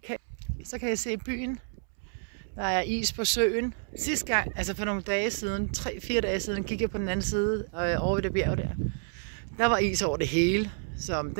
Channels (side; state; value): left; silent; 58 dB below the other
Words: Så kan jeg se byen. Der er is på søen. Sidste gang, altså for nogle dage siden, 3-4 dage siden, gik jeg på den anden side over ved det bjerg der. Der var is over det hele, så